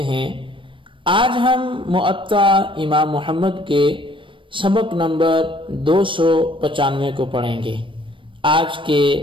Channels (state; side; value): late; left; 0.25 ms